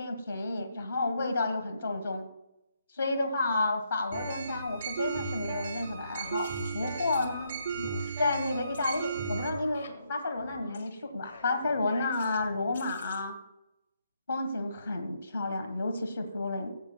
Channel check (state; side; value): inverted; both; correlation -0.77